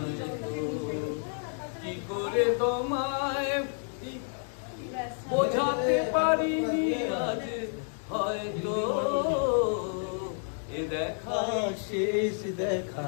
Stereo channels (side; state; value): right; silent; 58 dB below the other